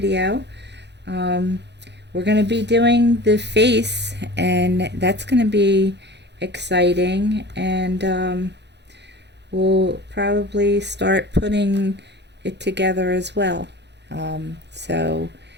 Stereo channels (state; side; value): late; left; 0.50 ms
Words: We're going to be doing the face, and that's going to be exciting, and we'll probably start putting it together as well. So